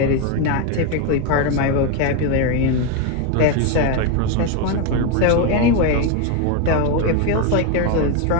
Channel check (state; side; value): different; both; correlation 0.02